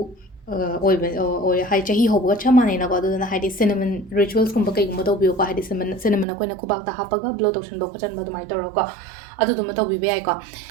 ꯑꯣꯏ ꯍꯥꯏ ꯆꯍꯤ ꯍꯧꯕꯒ ꯆꯞ ꯃꯥꯟꯅꯩꯅꯀꯣ ꯑꯗꯨꯗꯨꯅ ꯍꯥꯏꯗꯤ ꯁꯤꯅꯃꯟ ꯔꯤꯆꯨꯋꯦꯜꯁꯀꯨꯝꯕ ꯀꯩꯒꯨꯝꯕ ꯇꯧꯕꯤꯌꯨꯀꯣ ꯍꯥꯏꯗꯤ ꯁꯤꯅꯃꯟ ꯑꯩꯈꯣꯏꯅ ꯈꯨꯕꯥꯛꯇ ꯍꯥꯞꯄꯒ ꯕ꯭ꯂꯣ ꯇꯧꯁꯟꯕ ꯈꯣꯠꯆꯟꯕ ꯑꯗꯨꯃꯥꯏꯅ ꯇꯧꯔꯒꯀꯣ ꯑꯗꯨꯗꯨꯃ ꯇꯧꯕꯤꯕ ꯌꯥꯏꯀꯣ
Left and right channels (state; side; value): drops out; left; at 6.2 s